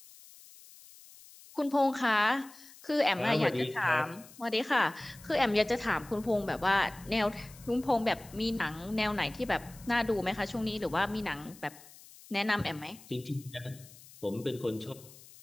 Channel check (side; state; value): left; noise; hiss, 21 dB below the sound